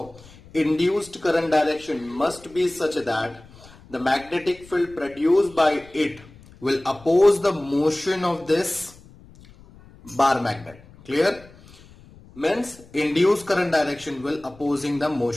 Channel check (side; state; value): left; noise; rumble, 23 dB below the sound